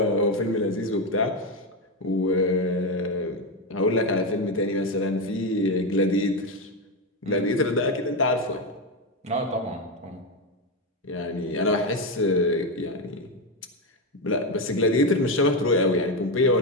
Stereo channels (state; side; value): normal; both; correlation 0.10